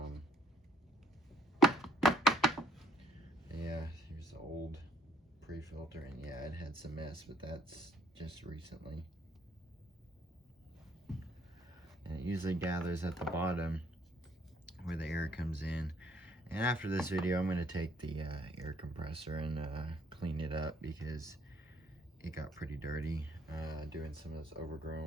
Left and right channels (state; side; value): normal; both; correlation 0.64